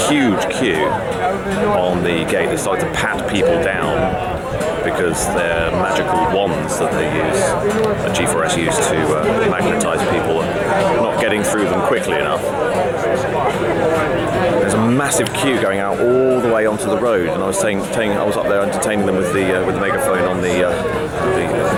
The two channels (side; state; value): both; identical; correlation 1.00